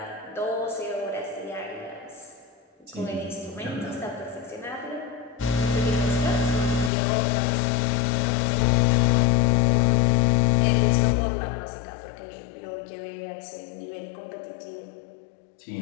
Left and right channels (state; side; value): drops out; right; at 6.9 s